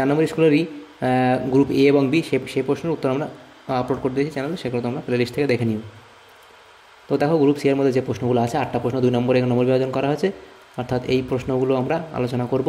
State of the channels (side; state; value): both; identical; correlation 1.00